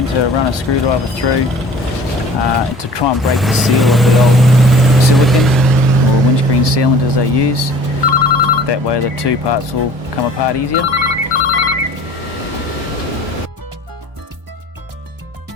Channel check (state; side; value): normal; both; correlation 0.47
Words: to run a screwdriver through to try and break the seal of the old silicone or windscreen sealant as they use. That way the two parts will come apart easier.